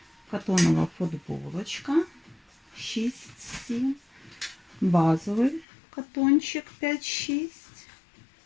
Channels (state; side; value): drops out; right; at 5.7 s